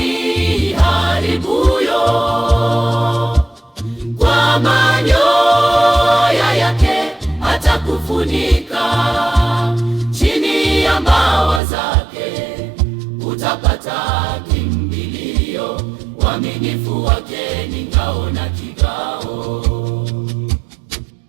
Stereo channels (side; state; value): left; drops out; at 11.6 s